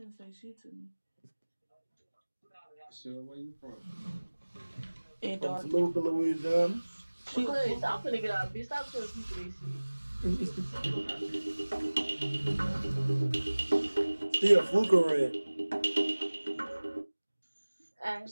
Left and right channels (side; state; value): both; inverted; correlation -1.00